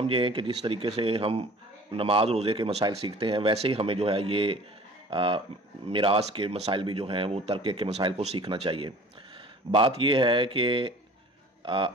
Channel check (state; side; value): normal; both; correlation 0.46